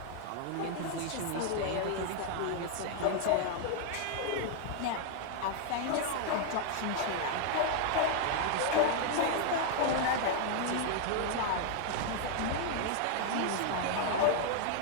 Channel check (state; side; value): different; both; correlation 0.00